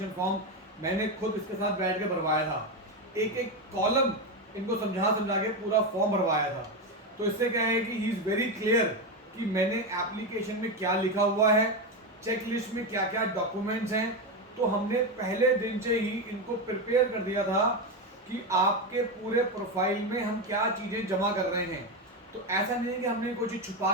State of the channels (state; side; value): normal; both; correlation 0.12